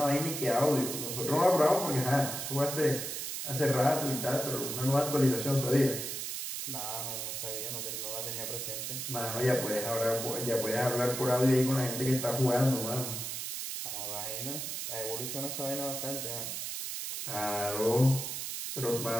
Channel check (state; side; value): noise; right; hiss, 4 dB below the sound